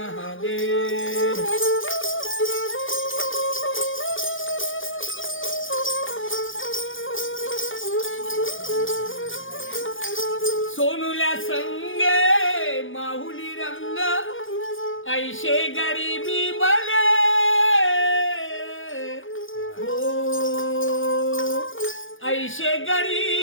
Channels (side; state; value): right; late; 0.58 ms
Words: सोनुल्या संगे माहुली रंग ऐशे गरीबी बले हो ऐशे